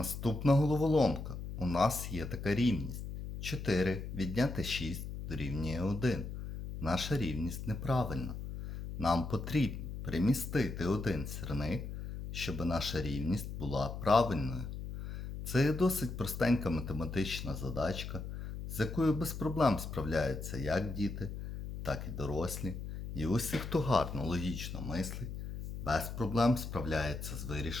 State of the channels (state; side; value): noise; left; hum, 7 dB below the sound